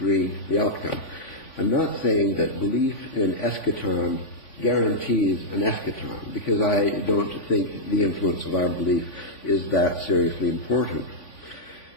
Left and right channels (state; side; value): late; right; 3.5 ms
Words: the outcome. I'm not saying that belief in eschaton guarantees an eschaton, because I don't think the influence of our belief is that seriously important.